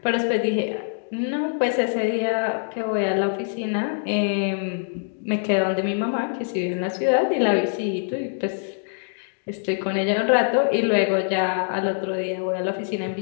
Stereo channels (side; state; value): right; silent; digital silence